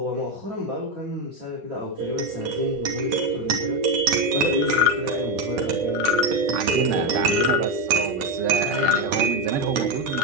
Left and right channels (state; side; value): late; left; 9.3 ms